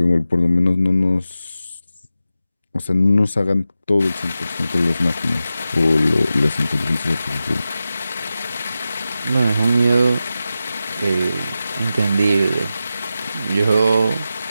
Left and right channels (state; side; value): inverted; both; correlation -0.92